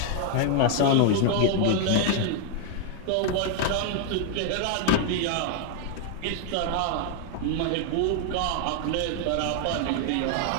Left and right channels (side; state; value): both; different; correlation 0.00